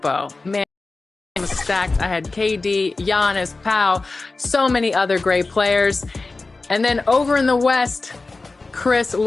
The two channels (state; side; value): quieter; right; 3.6 dB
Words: Man, I was stacked. I had KD, Giannis, Pau, so many other great players. And then over in the West, Chris